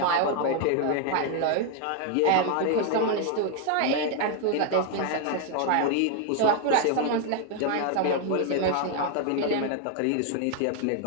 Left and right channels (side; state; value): both; different; correlation 0.00